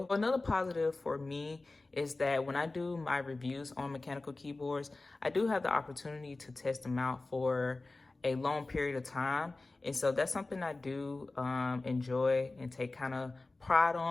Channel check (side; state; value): right; quieter; 3.2 dB